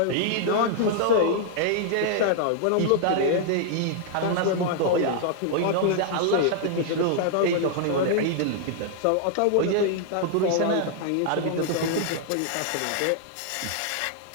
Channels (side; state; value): both; different; correlation -0.01